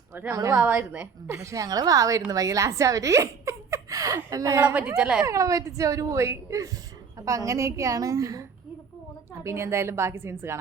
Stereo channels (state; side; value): quieter; left; 5.9 dB